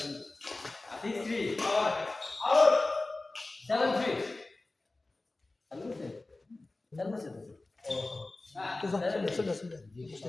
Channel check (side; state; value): right; quieter; 3.1 dB